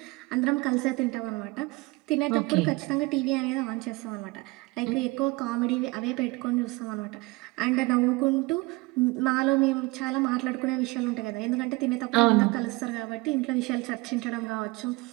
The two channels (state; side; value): quieter; left; 23.6 dB